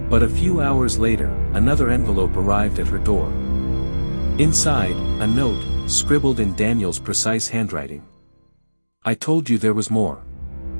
But a few hours later, another envelope arrived at her door. Inside, a note, scribbled in Daniel's precise handwriting. I told you there was more.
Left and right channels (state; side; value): inverted; both; correlation -1.00